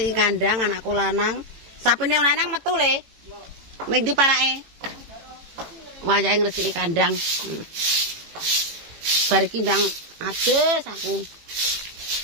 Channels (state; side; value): late; left; 18 ms